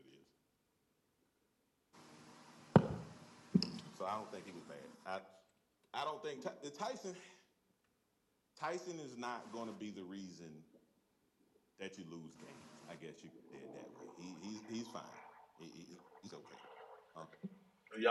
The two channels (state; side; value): identical; both; correlation 1.00